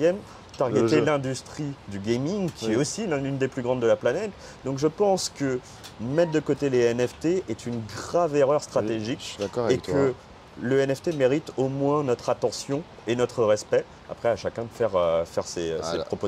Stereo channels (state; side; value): identical; both; correlation 1.00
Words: targeter l'industrie du gaming qui est aussi l'une des plus grandes de la planète. Donc je pense que mettre de côté les NFT est une grave erreur stratégique et que le NFT mérite au moins notre attention et notre respect. Après, à chacun de faire ses